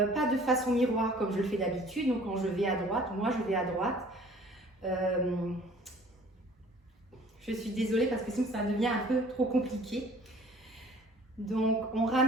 pas de façon miroir comme je le fais d'habitude. Donc quand je vais à droite, moi je vais à droite. Je suis désolée parce que sinon ça devient un peu trop compliqué. Donc on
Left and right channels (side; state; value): both; normal; correlation 0.52